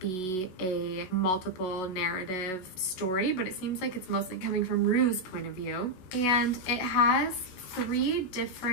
a multiple narrative story, but it seems like it's mostly coming from Rue's point of view. And it has 3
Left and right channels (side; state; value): right; late; 16 ms